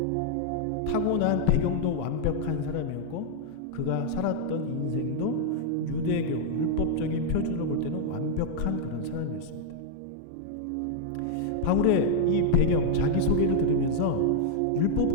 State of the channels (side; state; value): both; different; correlation -0.01